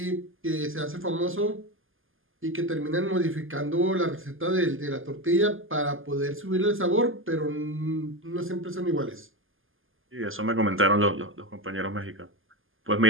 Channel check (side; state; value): left; late; 0.59 ms